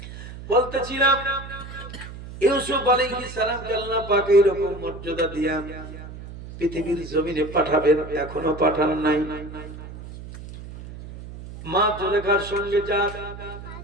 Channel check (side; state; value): right; noise; hum, 13 dB below the sound